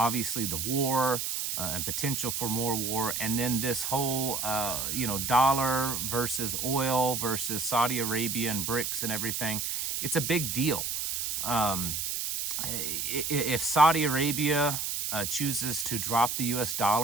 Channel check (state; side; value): noise; right; hiss, 2 dB below the sound